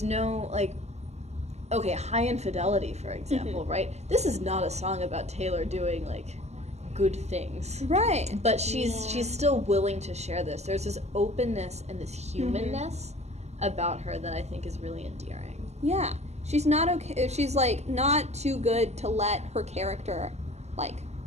no High Infidelity, for example, right? This is not a song about Taylor doing good things. Right. But she's still willing to share this. There's this openness and this humanness about her that I think is really endearing. Yeah. She's not okay. She's, like, not too good to let her character, like,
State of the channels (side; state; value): left; late; 0.32 ms